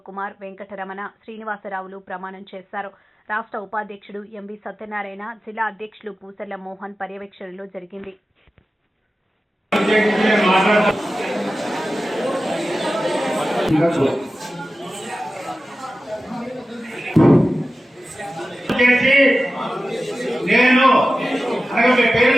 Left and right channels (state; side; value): normal; both; correlation 0.94